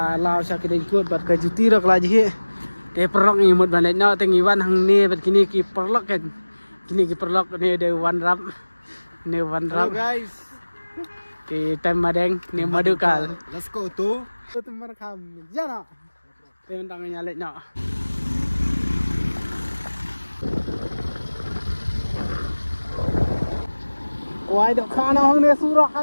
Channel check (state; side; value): inverted; both; correlation -1.00